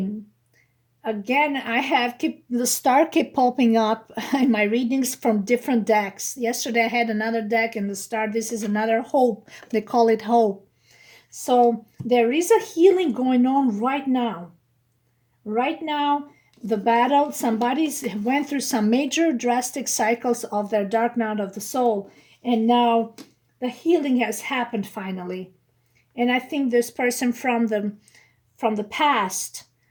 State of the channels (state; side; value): identical; both; correlation 1.00